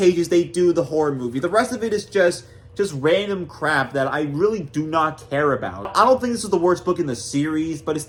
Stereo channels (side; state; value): both; identical; correlation 1.00